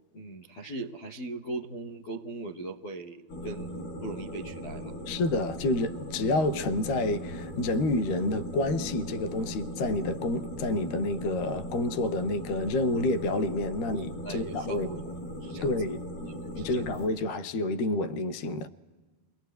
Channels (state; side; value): late; right; 13 ms